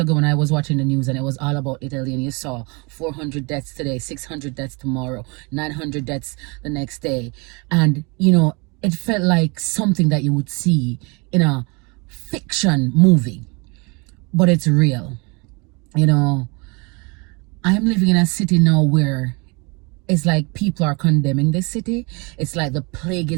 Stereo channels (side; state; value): left; quieter; 29.6 dB